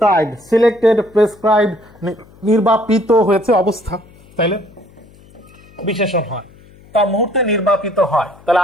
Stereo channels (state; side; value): noise; left; hum, 26 dB below the sound